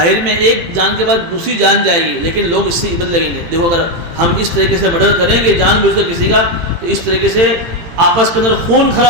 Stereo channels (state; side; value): late; left; 17 ms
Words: میں ایک جان کے بعد دوسری جان جائے گی, لیکن لوگ اس سے عبرت لگیں گے. دیکھو اگر ہم اس طریقے سے مرڈر کریں گے جان بوجھ کر کسی کا تو اس طریقے سے آپس کے اندر خون